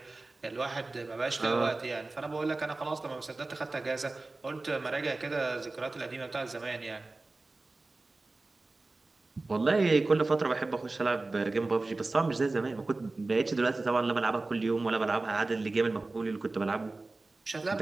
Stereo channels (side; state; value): left; quieter; 3.3 dB